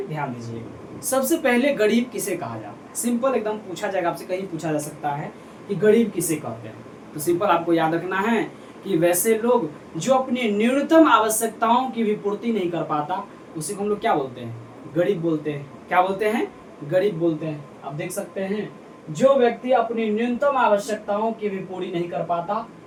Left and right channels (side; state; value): both; identical; correlation 1.00